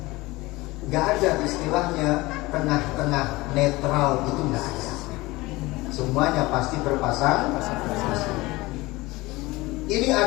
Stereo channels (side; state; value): right; quieter; 20.9 dB